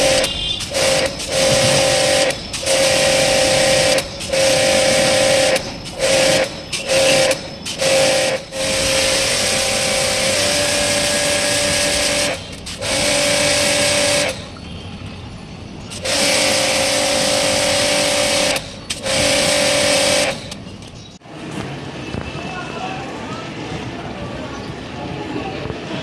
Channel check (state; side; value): identical; both; correlation 1.00